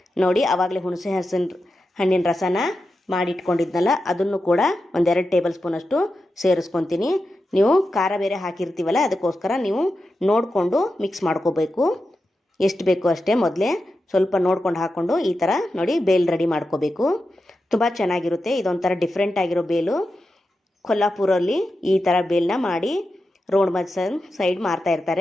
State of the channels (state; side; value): normal; both; correlation 0.90